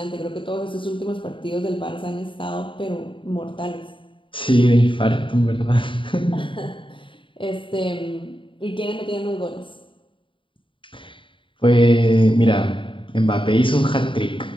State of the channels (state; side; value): late; right; 0.25 ms